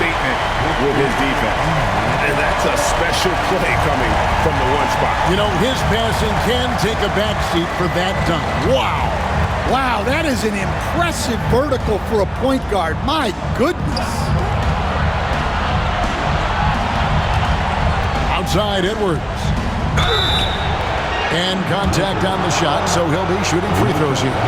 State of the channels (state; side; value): identical; both; correlation 1.00